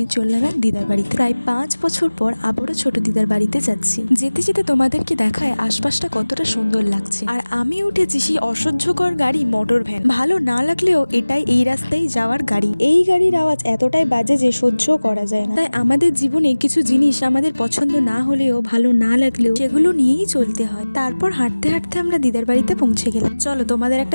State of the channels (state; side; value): inverted; both; correlation -1.00